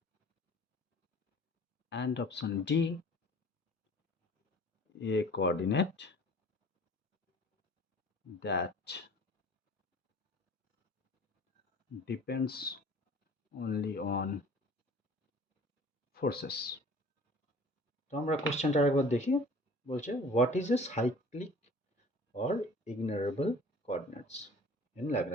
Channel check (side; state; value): both; normal; correlation 0.47